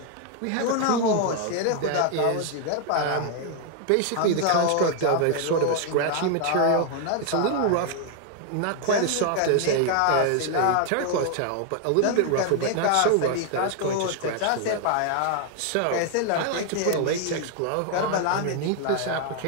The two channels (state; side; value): different; both; correlation 0.00